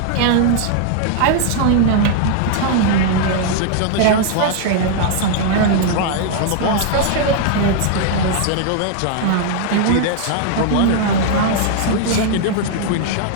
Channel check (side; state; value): both; different; correlation -0.01